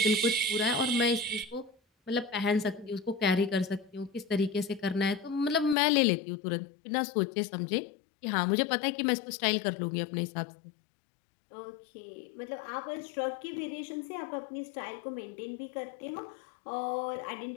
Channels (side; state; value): right; drops out; at 5.8 s